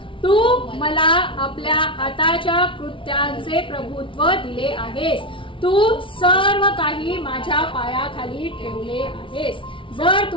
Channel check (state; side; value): late; right; 0.25 ms